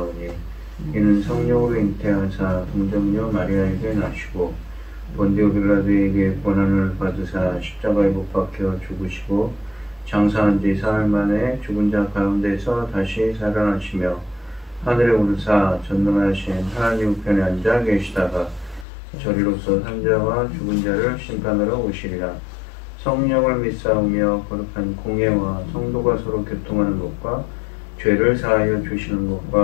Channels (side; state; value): right; drops out; at 18.9 s